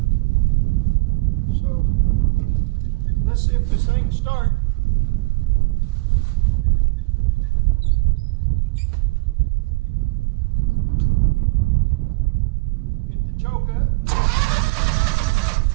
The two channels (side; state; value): left; quieter; 26.4 dB